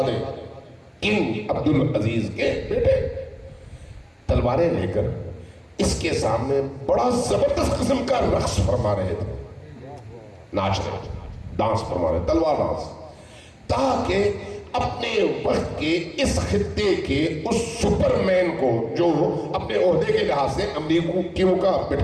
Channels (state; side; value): identical; both; correlation 1.00